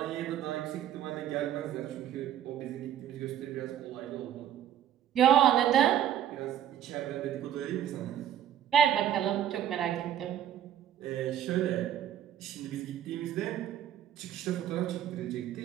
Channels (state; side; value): quieter; left; 10.7 dB